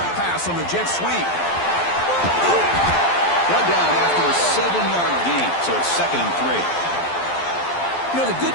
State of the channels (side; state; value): right; late; 12 ms